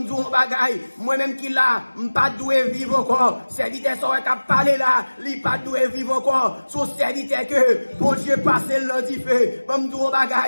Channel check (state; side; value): inverted; both; correlation -1.00